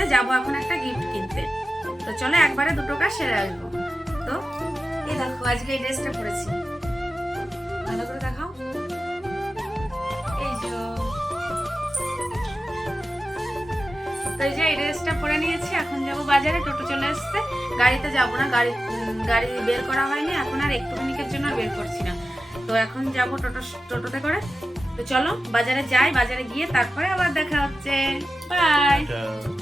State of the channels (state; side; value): normal; both; correlation 0.92